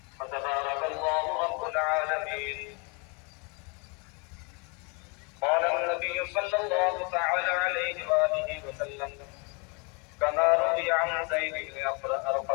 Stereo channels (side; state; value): right; quieter; 32.5 dB